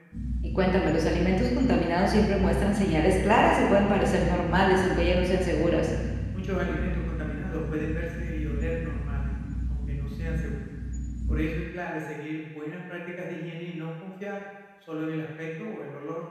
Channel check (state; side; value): identical; both; correlation 1.00